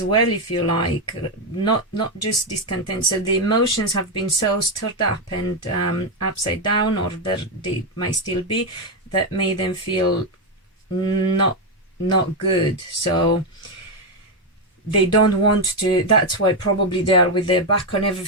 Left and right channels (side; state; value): both; normal; correlation 0.05